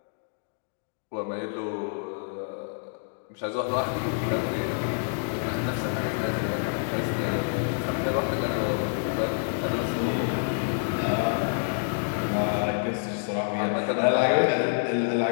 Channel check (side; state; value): right; silent; digital silence